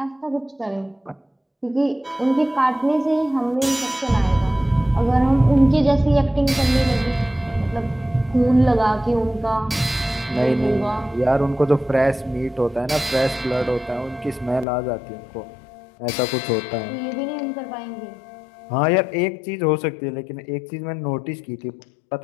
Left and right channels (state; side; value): drops out; right; at 14.7 s